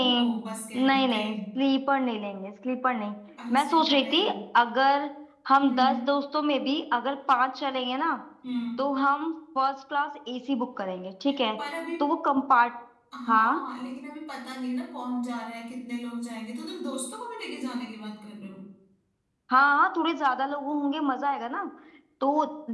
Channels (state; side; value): identical; both; correlation 1.00